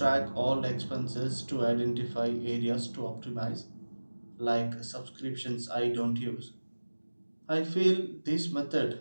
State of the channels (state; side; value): inverted; both; correlation -1.00